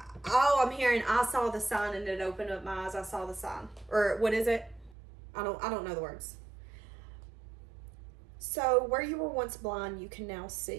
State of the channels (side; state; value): left; drops out; at 5.0 s